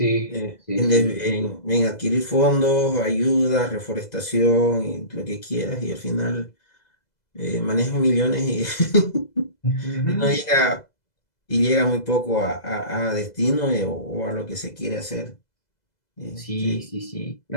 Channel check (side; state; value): right; late; 2.0 ms